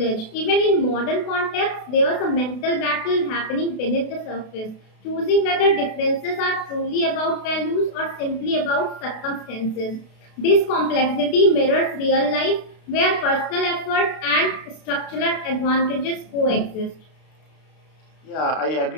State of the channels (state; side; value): late; right; 32 ms